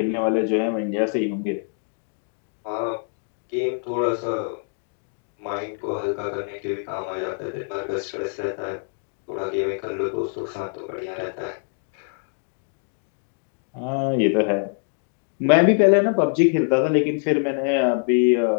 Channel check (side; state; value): right; silent; 57 dB below the other